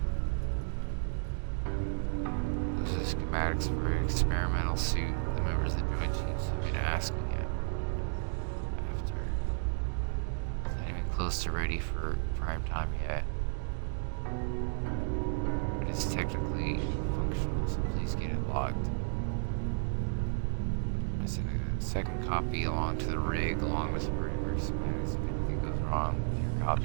Schematics for an experimental suit the members of the Joint Chiefs have been asking it after. It's not even close to ready for prime time yet. But it's technically functional, so please get it logged. I sent a second copy along to the rig along with firmware schematics. If anything goes wrong with your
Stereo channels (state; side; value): silent; left; digital silence